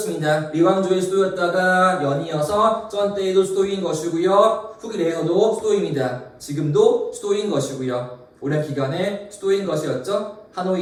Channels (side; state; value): both; identical; correlation 1.00